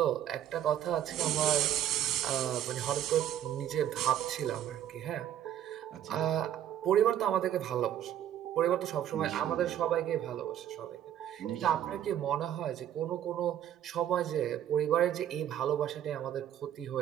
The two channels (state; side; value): quieter; left; 10.9 dB